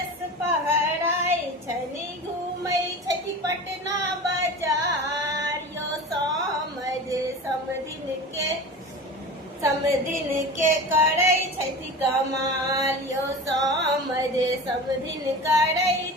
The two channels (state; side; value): normal; both; correlation 0.33